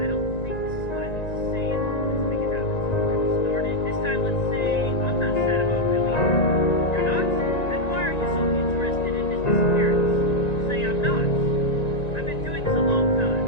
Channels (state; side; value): late; right; 1.9 ms